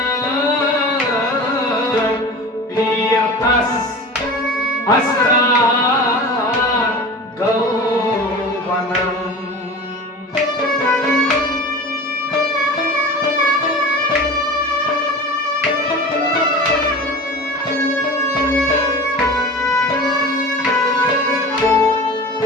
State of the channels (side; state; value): both; normal; correlation 0.35